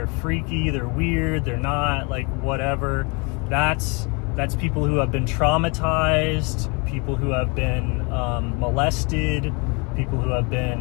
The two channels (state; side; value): quieter; right; 31.2 dB